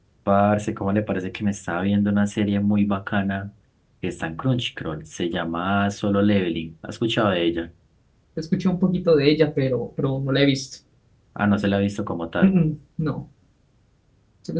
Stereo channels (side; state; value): both; identical; correlation 1.00